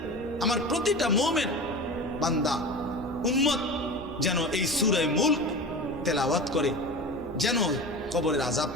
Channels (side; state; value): right; noise; rumble, 16 dB below the sound